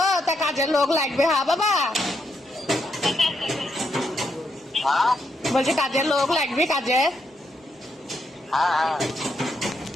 তা কাজের লোক লাগবে, হ্যাঁ বাবা। हाँ বলছি কাজের লোক লাগবে, কাজের।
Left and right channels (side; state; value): both; normal; correlation 0.79